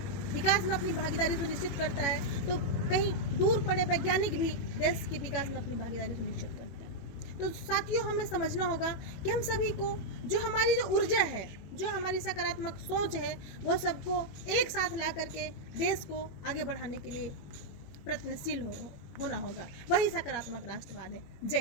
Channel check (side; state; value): right; late; 21 ms